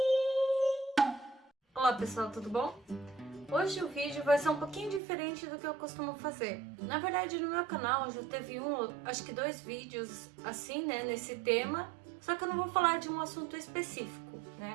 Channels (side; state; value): left; drops out; at 5.0 s